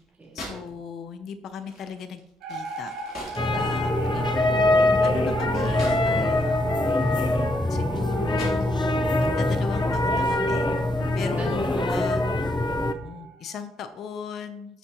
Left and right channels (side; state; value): both; normal; correlation 0.77